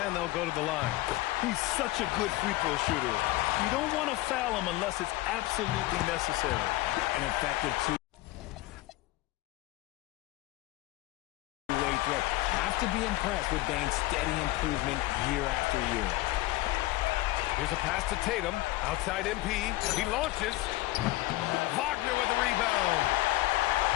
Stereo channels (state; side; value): quieter; right; 18.2 dB